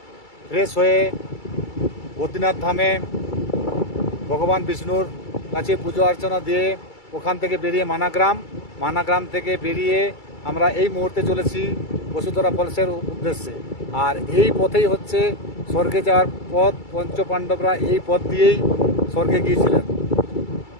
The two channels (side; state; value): right; late; 2.3 ms